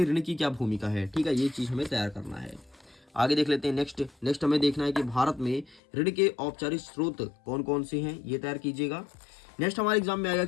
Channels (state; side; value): drops out; right; at 5.8 s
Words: ऋण की क्या भूमिका है। ठीक है, ये चीज हमें तैयार करना है। आगे देख लेते हैं। नेक्स्ट हमें देखना है कि भारत में ऋण के औपचारिक स्रोत कौन कौन से हैं, ये तैयार कीजिएगा। नेक्स्ट हमारे एग्जाम में आएगा